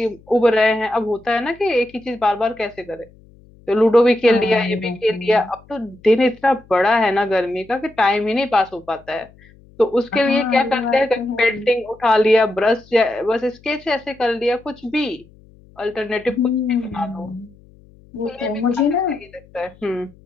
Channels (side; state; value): left; noise; hum, 27 dB below the sound